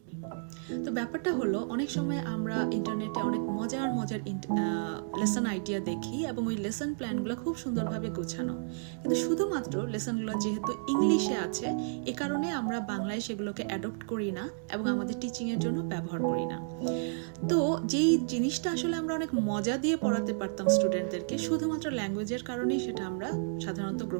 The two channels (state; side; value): silent; left; digital silence